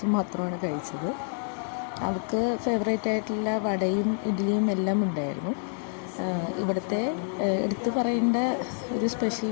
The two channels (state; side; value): silent; right; 60 dB below the other